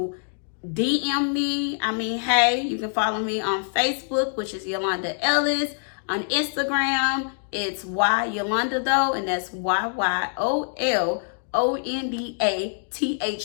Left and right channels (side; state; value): right; silent; digital silence